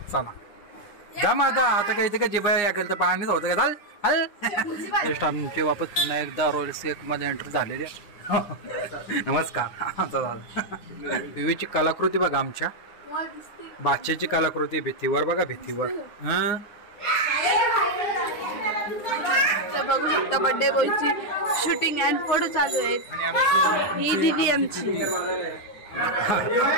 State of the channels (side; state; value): right; late; 9.7 ms